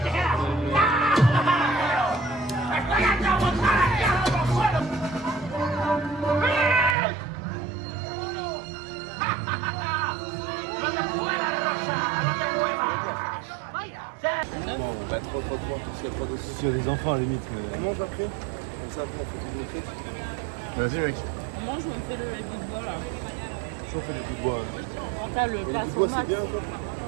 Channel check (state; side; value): drops out; left; at 7.0 s